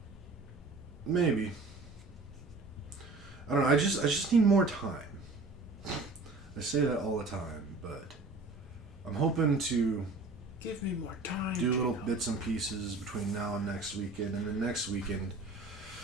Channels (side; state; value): left; quieter; 3.5 dB